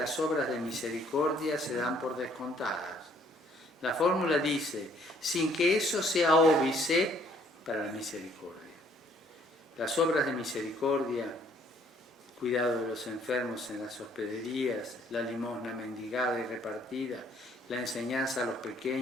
obras de misericordia se dan por descontadas. La fórmula dice, sin que eso sea óbice para la misericordia. Las obras de misericordia, cuidado de los enfermos en las hospederías, la limosna mendigada y repartida, la enseñanza a los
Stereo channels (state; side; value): normal; both; correlation 0.62